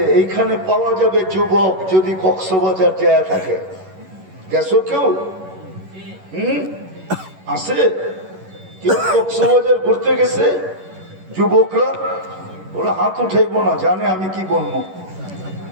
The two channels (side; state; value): left; late; 11 ms